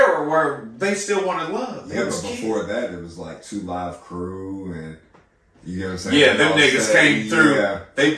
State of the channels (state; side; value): identical; both; correlation 1.00